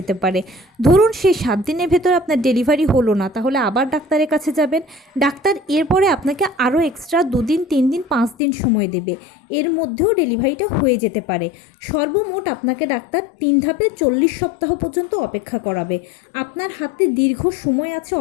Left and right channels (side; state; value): right; drops out; at 8.3 s